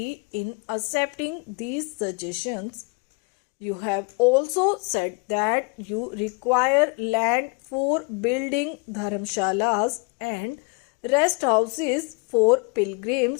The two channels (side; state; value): right; quieter; 31.9 dB